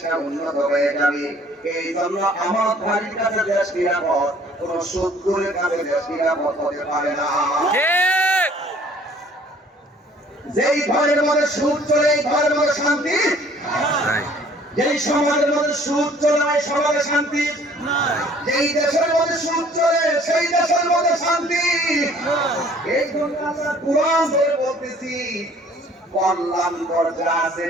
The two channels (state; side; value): normal; both; correlation 0.55